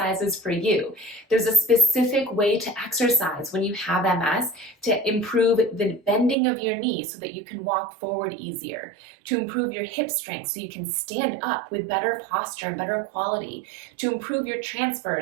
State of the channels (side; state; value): left; drops out; at 6.4 s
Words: for you. There's a specific way to exercise when you have MS to improve the bending of your knee so that you can walk forward easier, to improve your hip strength so you can stand up with better posture and better quality, to improve your